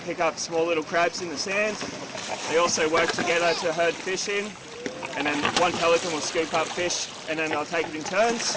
pick up small little crabs in the sand. They also work together to herd fish in, and then one pelican will scoop up fish and then they'll take it in turns.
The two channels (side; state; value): both; identical; correlation 1.00